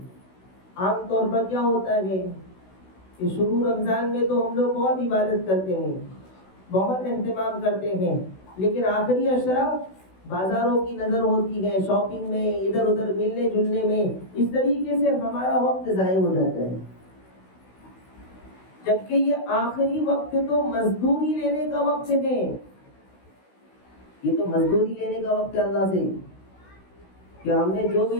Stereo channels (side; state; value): right; late; 16 ms